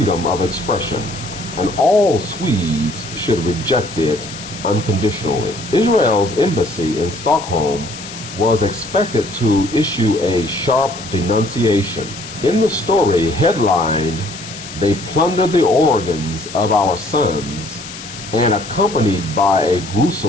of expression, and all Swedes should reject it unconditionally. Israel's embassy in Stockholm was expected to issue a sharp denunciation. In the story headlined, "They plundered the organs of our sons," and accompanied by a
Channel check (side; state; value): left; noise; hiss, 13 dB below the sound